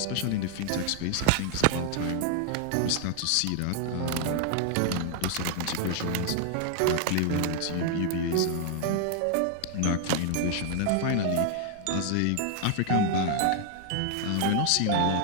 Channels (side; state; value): both; different; correlation 0.00